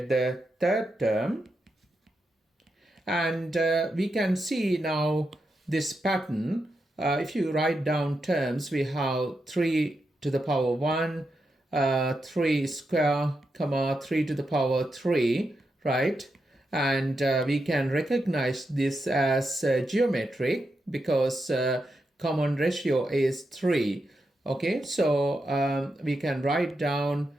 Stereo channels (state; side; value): normal; both; correlation 0.86